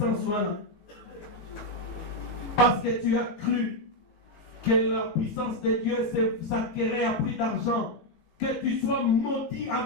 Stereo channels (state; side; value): late; right; 19 ms